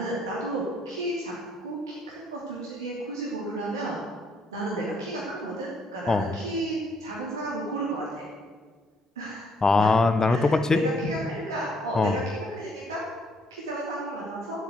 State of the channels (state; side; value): normal; both; correlation 0.67